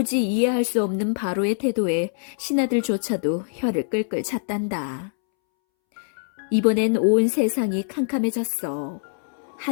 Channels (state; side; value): silent; right; 63 dB below the other